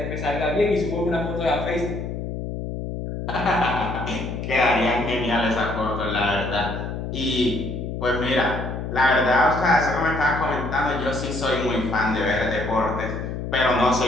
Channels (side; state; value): left; noise; hum, 5 dB below the sound